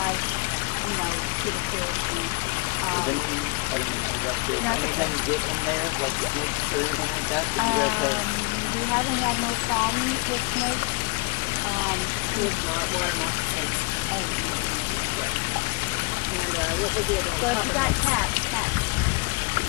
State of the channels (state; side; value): quieter; right; 29.2 dB